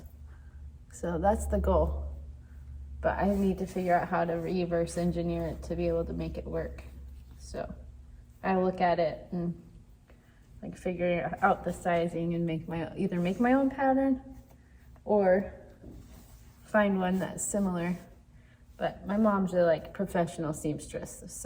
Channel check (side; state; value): both; identical; correlation 1.00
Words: So that's the goal. But I need to figure out how to reverse engineer it to be able to make it work. So I look at it and like figure out the sizing and either make my own pattern or find one that's similar. But my mom's a like professional seamstress,